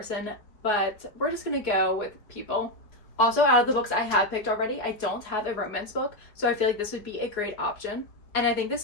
but we're just gonna go with people. Also, out of the books I have picked already, I don't have a romance book, so I feel like this would be a great option. And I think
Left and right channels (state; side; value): late; right; 4.8 ms